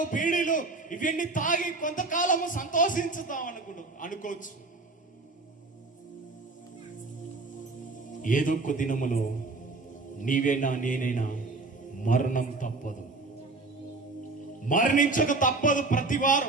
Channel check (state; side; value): quieter; left; 3.5 dB